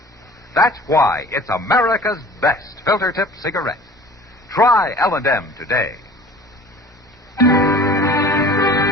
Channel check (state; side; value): normal; both; correlation 0.45